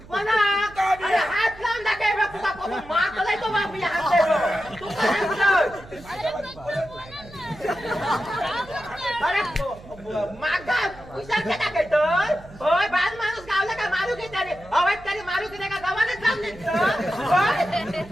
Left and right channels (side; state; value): right; noise; hum, 20 dB below the sound